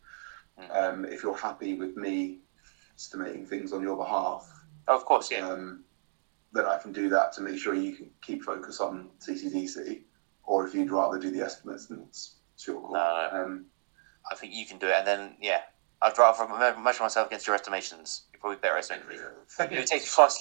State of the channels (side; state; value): left; silent; digital silence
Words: If you're happy with me estimating things on your behalf, of course, yeah. Then I can do that to make sure you can keep focus on CCDC, or if you'd rather do the estimates, then it's your call. No. I think you can do it, and then I'd rather measure myself against your estimations. You're probably better estimating. If it takes twice as